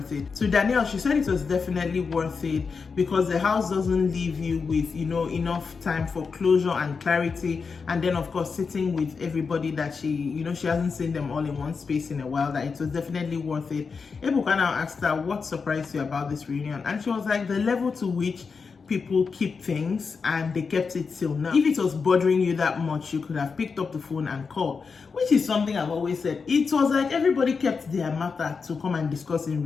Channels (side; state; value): right; quieter; 5.2 dB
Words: it. To Danielle, she said it was definitely worth it because the house doesn't leave you with, you know, enough time for closure and clarity. And then, of course, sitting with everybody that she, you know, she hasn't seen them all in one space in a while, that it was definitely worth it. Ebuka now asked her, what surprised you about this reunion? And she was like, the level to which people keep things, and they kept it till now. If it was bothering you that much, you could have picked up the phone and called, which is something I've always said. It was like everybody kept their matter to come and discuss in